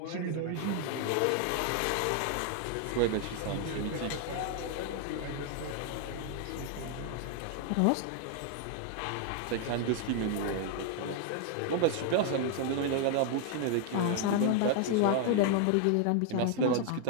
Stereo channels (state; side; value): different; both; correlation 0.00